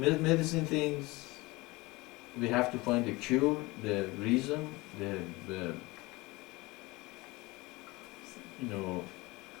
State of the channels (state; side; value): quieter; right; 22.4 dB